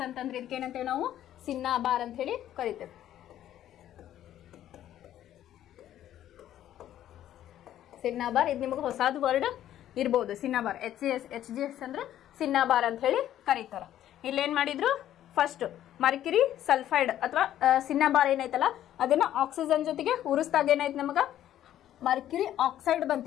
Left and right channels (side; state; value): right; quieter; 11.9 dB